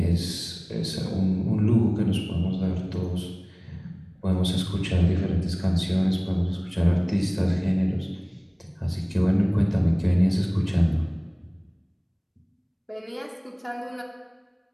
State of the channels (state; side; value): identical; both; correlation 1.00